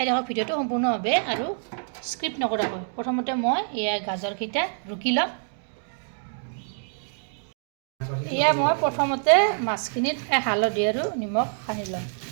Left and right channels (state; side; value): silent; left; 61 dB below the other